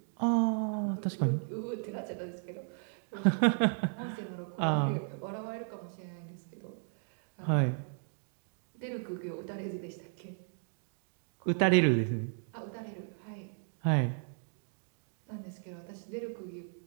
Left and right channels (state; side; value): silent; left; 54 dB below the other